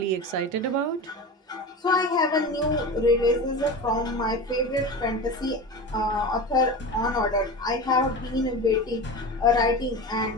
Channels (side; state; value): both; normal; correlation 0.28